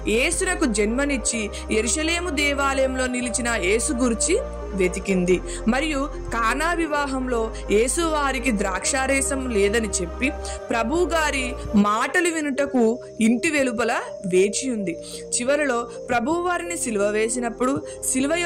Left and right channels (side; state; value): both; identical; correlation 1.00